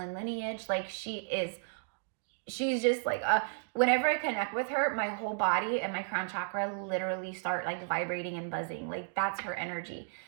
lineage. Like she's just like, whenever I connect with her, my whole body and my crown chakra literally start like vibrating and buzzing. Like that's her energy.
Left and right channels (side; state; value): left; silent; digital silence